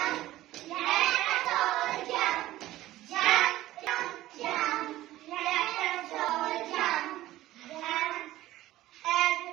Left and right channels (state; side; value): quieter; left; 15.6 dB